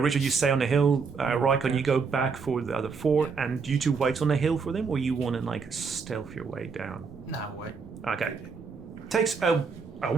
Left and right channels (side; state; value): left; quieter; 5.2 dB